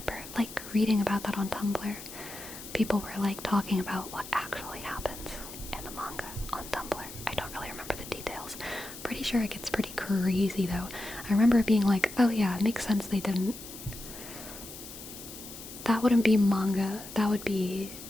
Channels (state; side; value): noise; left; hiss, 13 dB below the sound